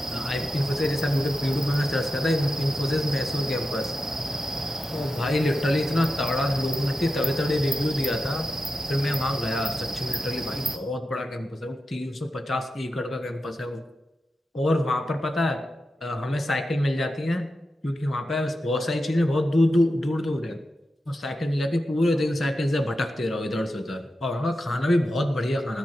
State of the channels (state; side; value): normal; both; correlation 0.90